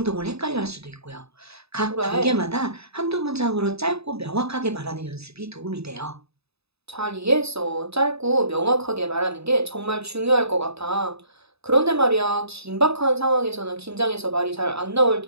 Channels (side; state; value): left; late; 0.79 ms